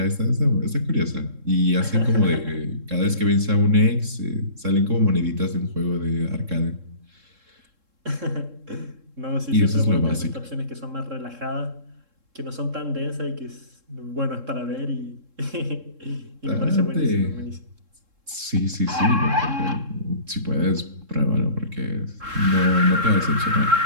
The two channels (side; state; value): left; late; 3.7 ms